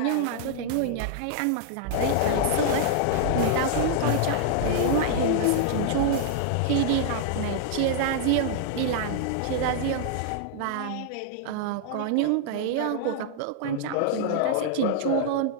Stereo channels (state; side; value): different; both; correlation -0.01